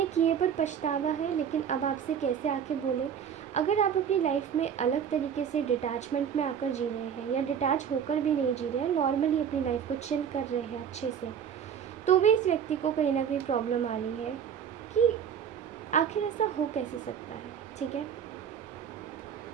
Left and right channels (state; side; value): quieter; left; 8.1 dB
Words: किए पर पछतावा है, लेकिन अब आपसे कैसे आके बोले। अगर आप अपनी लाइफ में अलग तरीके से डिटैचमेंट में आकर जी रहे हैं, या डिटैच होकर भी नहीं जी रहे हैं, नॉर्मली अपनी लाइफ को चिल कर रहे हैं अच्छे से, तो भी इस व्यक्ति को कहीं ना कहीं प्रॉब्लम आ रही है कि आखिर ऐसा हो कैसे सकता है। ठीक है,